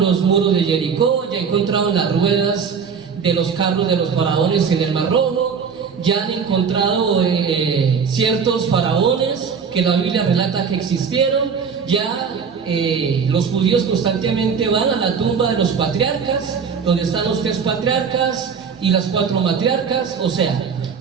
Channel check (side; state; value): left; quieter; 6.2 dB